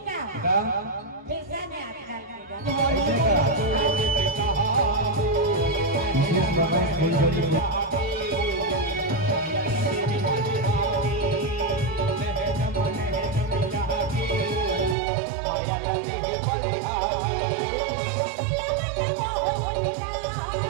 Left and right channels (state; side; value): drops out; left; at 15.0 s